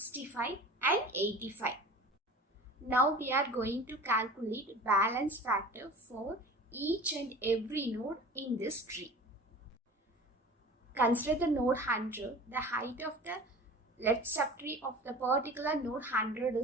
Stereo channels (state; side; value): normal; both; correlation 0.39